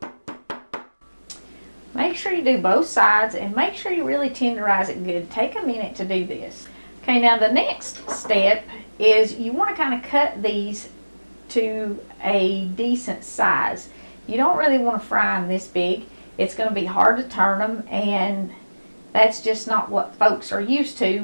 Make sure you do both sides and make sure you really tenderize it good. Take a minute to do this. Okay, now the next step is you want to kind of cut these to a decent size. You don't really want to fry them this big. It's going to be hard to turn them, and that's just not what folks are used to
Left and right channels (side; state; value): both; inverted; correlation -1.00